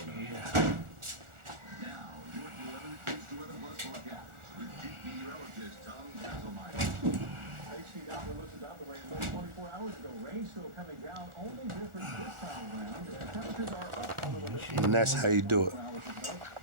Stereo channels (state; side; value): late; left; 1.4 ms